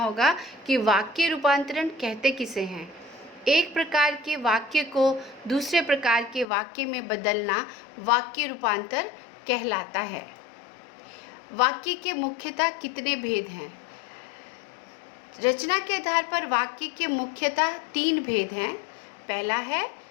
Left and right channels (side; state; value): right; drops out; at 6.5 s